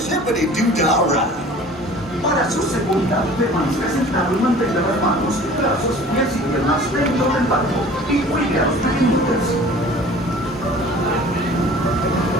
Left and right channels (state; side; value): normal; both; correlation 0.46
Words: ride. Para su seguridad, permanezca sentado y mantenga las manos, brazos, pies y piernas dentro del barco y cuide a los pequeñitos.